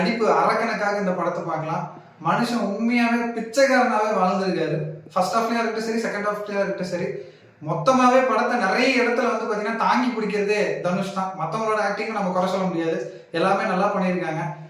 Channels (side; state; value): both; identical; correlation 1.00